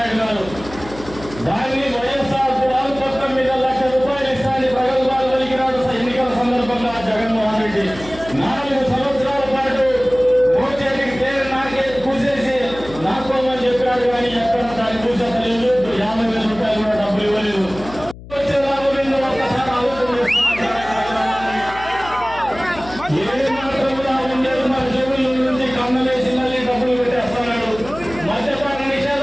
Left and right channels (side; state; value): left; noise; hum, 16 dB below the sound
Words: గారు. దాన్ని వైఎస్ఆర్ గృహాల పథకం మీద ₹1,00,000 ఇస్తానని ప్రగల్భాలు పలికినాడు ఎన్నికల సందర్భంగా జగన్మోహన్ రెడ్డి. 4 సంవత్సరాల పాటు మోచేతికి పేరు నాకే కూసేసి నాకోమని చెప్పాడు. కానీ ఎక్కడ దాన్ని కూసేత లేదు. ₹50,000 కూడా డబ్బులు ఇవ్వలేదు. వచ్చే లాభం ఏందో ఒక్కసారి ఆలోచన ఏ మాత్రం కూడా ఉండేది. మన జేబుల నుంచి కన్నలేసి మళ్ళీ డబ్బులు పెట్టేస్తున్నాడు. మద్యపాన